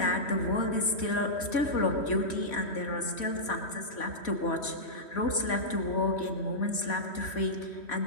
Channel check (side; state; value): right; late; 3.1 ms